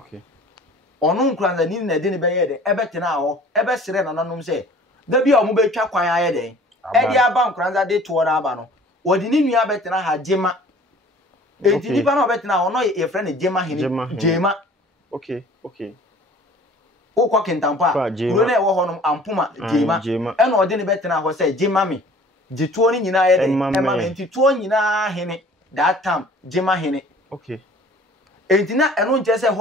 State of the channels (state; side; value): normal; both; correlation 0.50